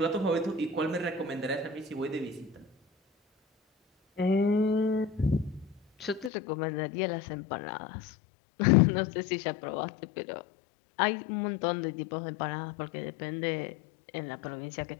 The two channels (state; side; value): drops out; right; at 6.3 s